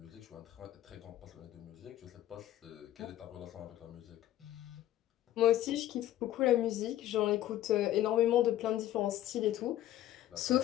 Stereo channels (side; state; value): right; quieter; 13.3 dB